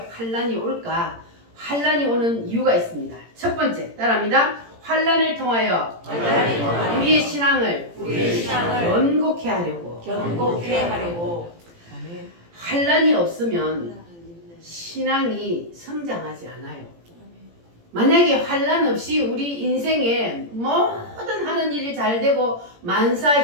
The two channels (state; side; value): late; left; 17 ms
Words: 올까? 환난이 오는 이유가 있습니다. 첫 번째, 따라합니다. 환난을 통하여 우리의 신앙을 견고케 하려고. 견고케 하려고. 아멘. 환난이 없으면 신앙이 성장하지 않아요. 만약에 환난 없이 우리 인생에 모든 하는 일이 잘 되고 만사